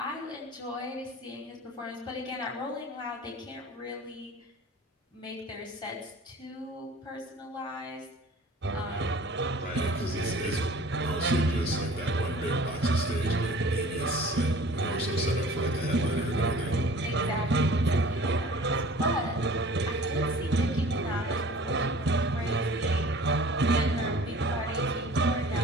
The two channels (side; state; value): both; normal; correlation 0.46